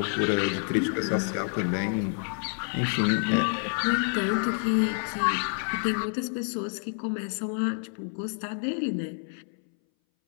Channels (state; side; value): silent; right; 59 dB below the other